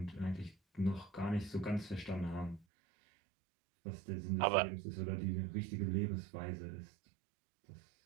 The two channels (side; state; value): left; drops out; at 2.7 s